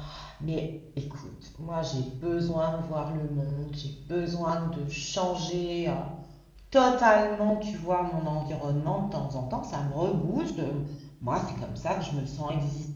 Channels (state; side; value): identical; both; correlation 1.00